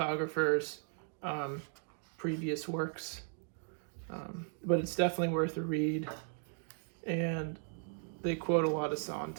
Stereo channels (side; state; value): left; silent; 53 dB below the other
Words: previous works. But it's definitely worth a read. And they quote a lot of